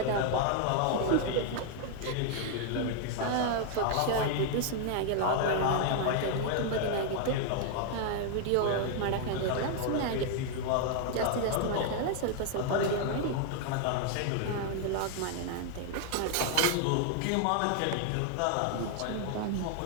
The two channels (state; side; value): different; both; correlation 0.00